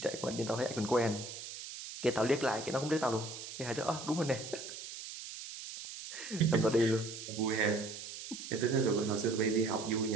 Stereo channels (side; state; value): right; noise; hiss, 10 dB below the sound